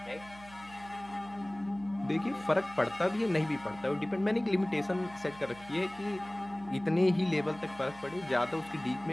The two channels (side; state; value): right; noise; hum, 21 dB below the sound